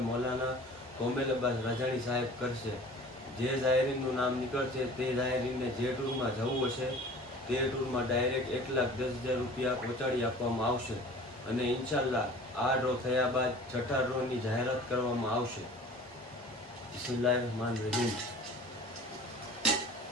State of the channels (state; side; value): normal; both; correlation 0.44